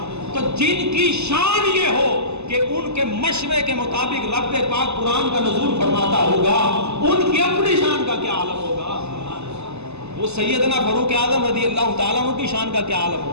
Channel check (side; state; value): left; late; 0.80 ms